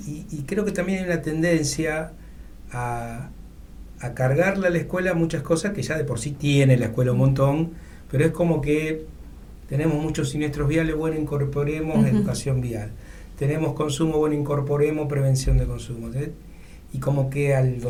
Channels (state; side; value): identical; both; correlation 1.00